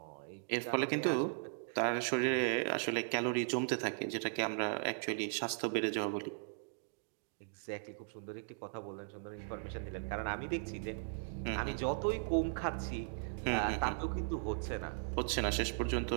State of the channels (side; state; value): left; silent; digital silence